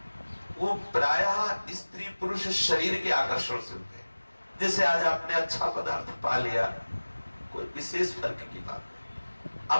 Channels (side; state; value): both; inverted; correlation -1.00